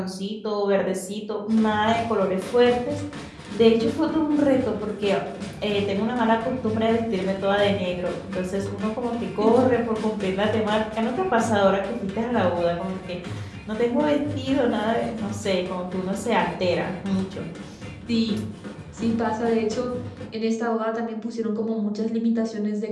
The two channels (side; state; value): both; identical; correlation 1.00